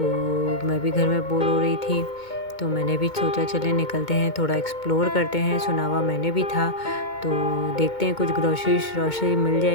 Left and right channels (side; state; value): right; late; 2.2 ms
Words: मैं भी घर में बोर हो रही थी, तो मैंने भी सोचा चलें निकलते हैं, थोड़ा एक्सप्लोर करते हैं। सुना हुआ मैंने भी था, तो देखते हैं कुछ ग्रोसरी मिल